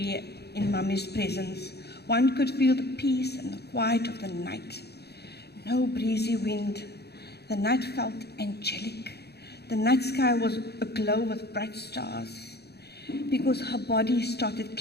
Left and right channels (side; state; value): right; late; 0.48 ms